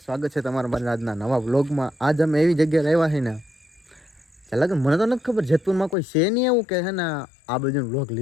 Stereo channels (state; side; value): drops out; right; at 6.0 s